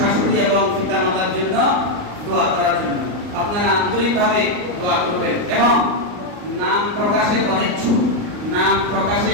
এবং পিতামাতার জন্য দোয়া করার জন্য। আপনারা আন্তরিকভাবে দোয়া করবেন এবং নাম প্রকাশে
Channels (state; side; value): late; left; 39 ms